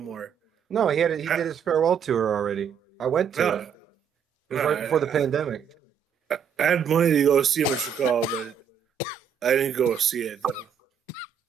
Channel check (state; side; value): quieter; left; 7.5 dB